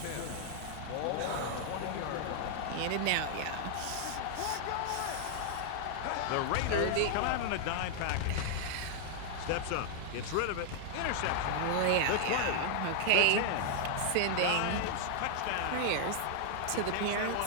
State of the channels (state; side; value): different; both; correlation 0.00